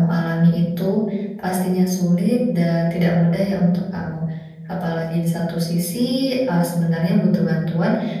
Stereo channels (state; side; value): identical; both; correlation 1.00